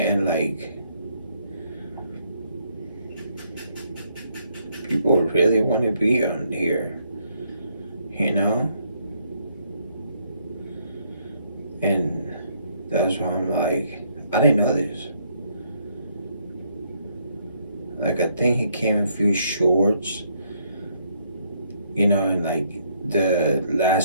people really want to be on here, and that's why I'm I didn't know this. I think he came in a few shorts, and the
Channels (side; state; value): both; inverted; correlation -0.70